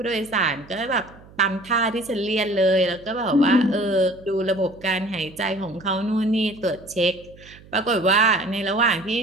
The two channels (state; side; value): noise; right; hum, 23 dB below the sound